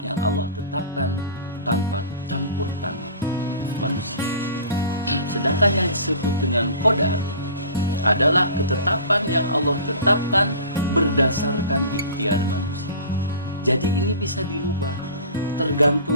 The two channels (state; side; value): inverted; both; correlation -0.41